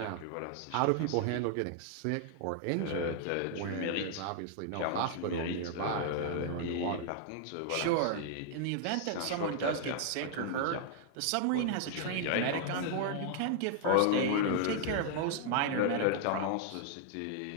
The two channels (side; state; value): both; different; correlation 0.00